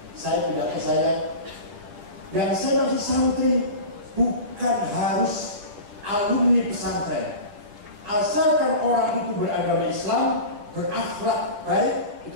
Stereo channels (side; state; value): left; late; 9.9 ms